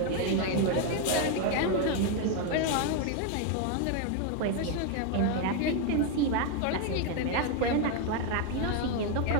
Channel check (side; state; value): both; different; correlation 0.01